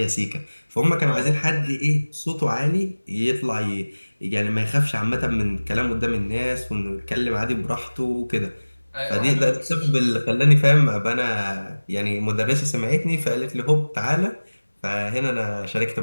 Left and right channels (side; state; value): both; inverted; correlation -1.00